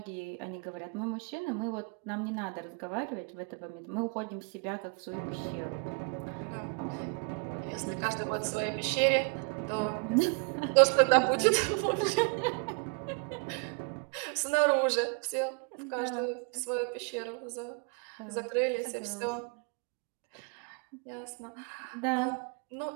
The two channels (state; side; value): quieter; left; 34.7 dB